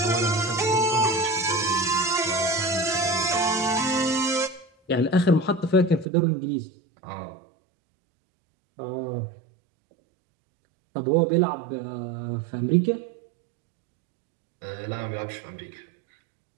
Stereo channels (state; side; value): drops out; left; at 6.1 s